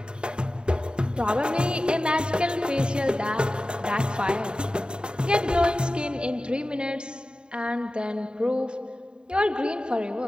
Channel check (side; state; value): left; late; 0.050 ms